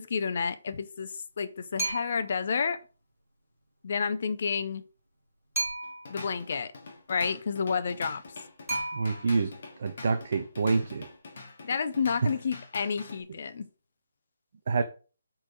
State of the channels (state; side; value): inverted; both; correlation -0.82